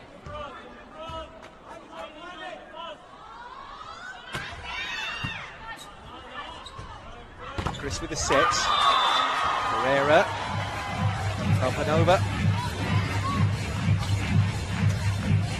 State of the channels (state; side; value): identical; both; correlation 1.00